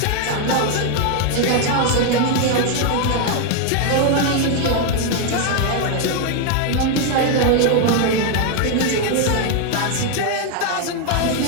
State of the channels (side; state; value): both; different; correlation 0.01